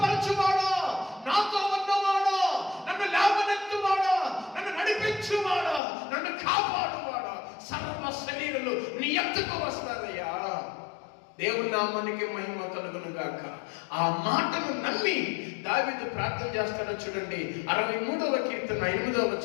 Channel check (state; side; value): drops out; right; at 5.8 s